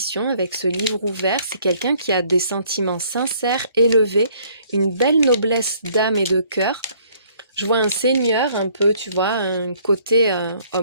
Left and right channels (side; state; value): both; inverted; correlation -0.61